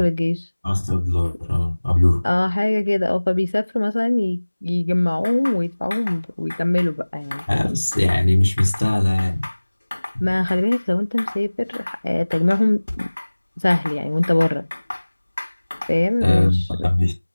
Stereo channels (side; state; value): both; inverted; correlation -1.00